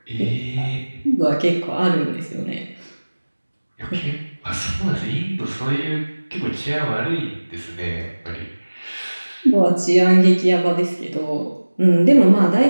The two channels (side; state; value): both; inverted; correlation -1.00